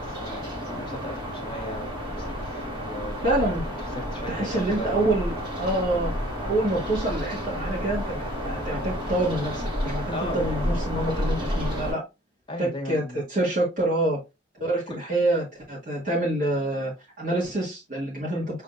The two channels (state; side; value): normal; both; correlation 0.54